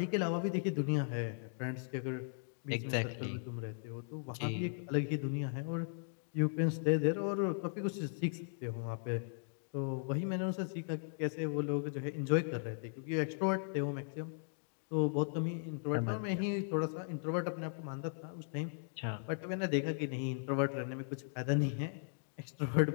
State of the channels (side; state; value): right; silent; digital silence